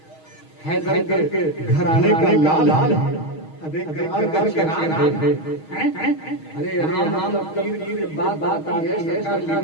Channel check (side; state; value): right; late; 6.4 ms